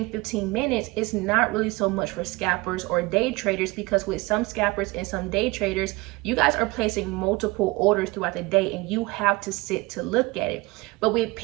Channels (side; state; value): left; quieter; 23.1 dB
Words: 15 minutes, it's not really so much for scalpers or day traders, because with some scalpers and some day traders, you guys are placing multiple orders throughout the day and you have to sit to look at it. But with